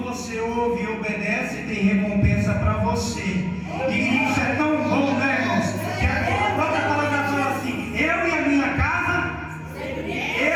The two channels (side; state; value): both; identical; correlation 1.00